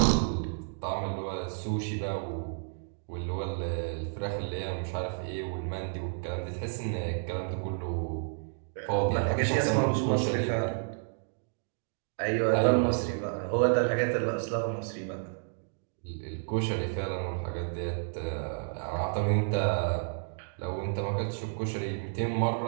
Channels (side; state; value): left; silent; digital silence